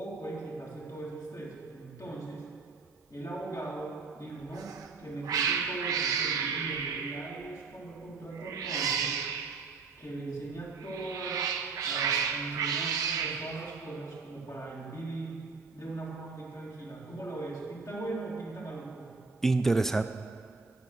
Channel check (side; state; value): left; quieter; 4.6 dB